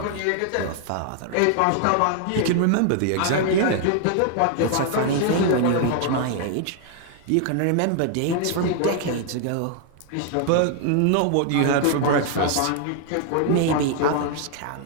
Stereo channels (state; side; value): different; both; correlation 0.00